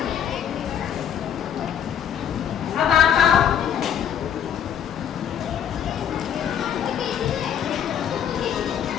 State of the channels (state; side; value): quieter; right; 9.1 dB